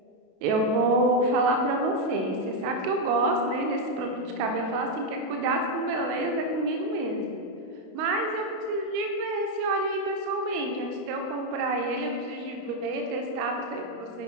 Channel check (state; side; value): late; left; 32 ms